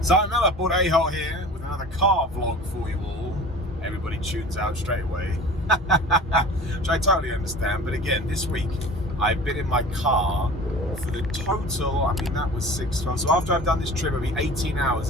Simon Miller, Bud A-Hole here with another car vlog for you all. Everybody tunes out straight away, which I totally understand. But again, this week I've been in my car for the total, I mean that was 6 months. So after I've done this trip, it'll be 18 hours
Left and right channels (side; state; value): both; normal; correlation 0.40